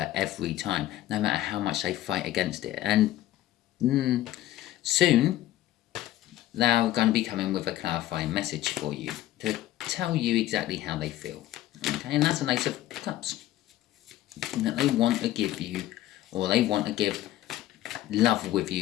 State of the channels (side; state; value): right; quieter; 14.2 dB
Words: every time, no matter how much they fight against it. And soon, they're going to be coming with a clarifying message for you to tell you exactly how they feel. Okay, and that's an Ace of Cups. That they want to give you, or they want to give love with